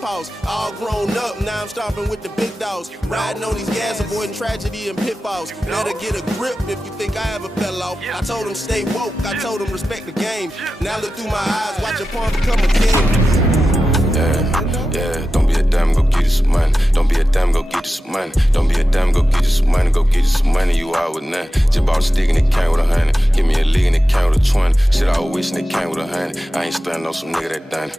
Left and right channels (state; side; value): normal; both; correlation 0.93